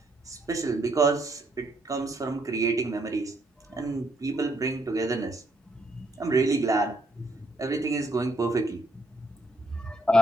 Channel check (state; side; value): normal; both; correlation 0.73